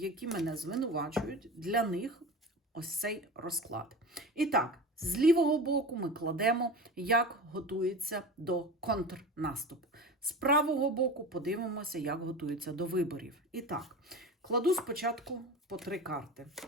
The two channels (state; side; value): normal; both; correlation 0.31